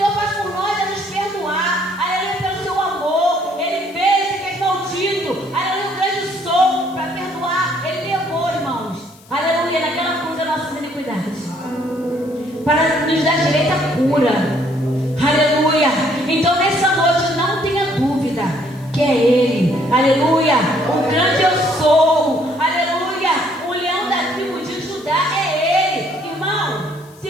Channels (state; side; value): noise; left; hiss, 27 dB below the sound